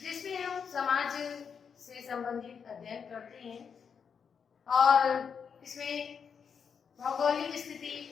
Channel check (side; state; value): right; quieter; 6.6 dB